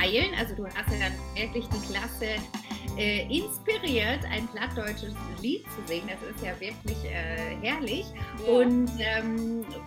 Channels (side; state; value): both; identical; correlation 1.00